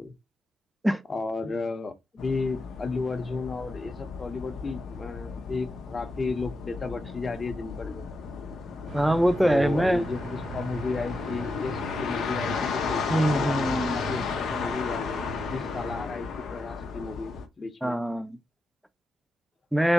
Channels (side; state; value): both; normal; correlation 0.87